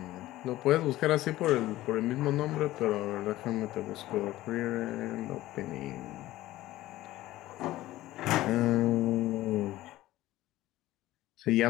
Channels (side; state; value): right; quieter; 16.0 dB